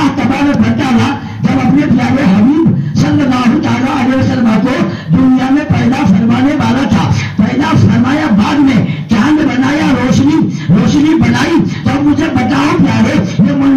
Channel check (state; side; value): identical; both; correlation 1.00